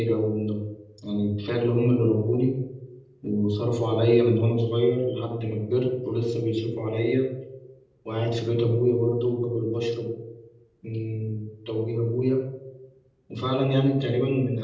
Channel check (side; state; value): both; identical; correlation 1.00